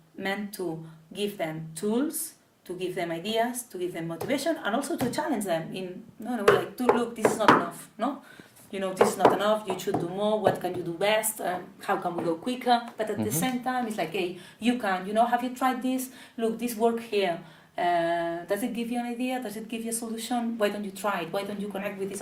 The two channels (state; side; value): identical; both; correlation 1.00